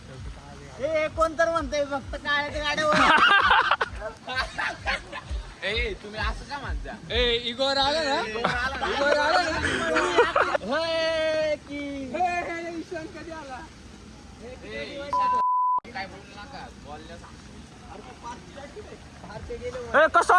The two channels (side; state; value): both; identical; correlation 1.00